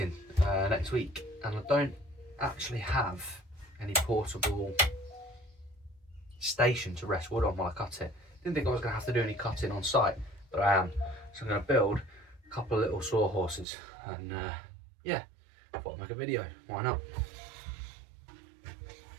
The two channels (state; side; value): drops out; left; at 13.7 s